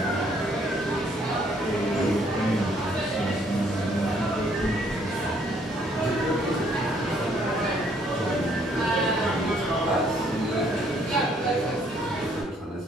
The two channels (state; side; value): normal; both; correlation 0.66